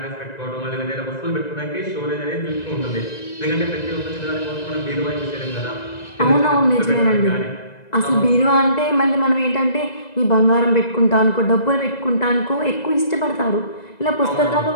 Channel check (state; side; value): late; right; 2.0 ms